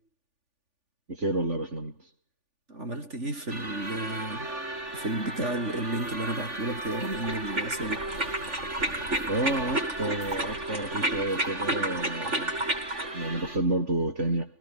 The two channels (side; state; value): left; late; 3.5 ms